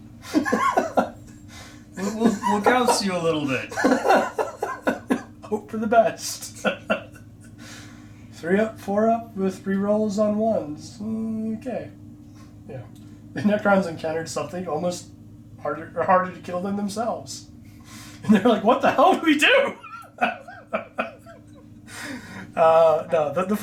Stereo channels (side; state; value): both; identical; correlation 1.00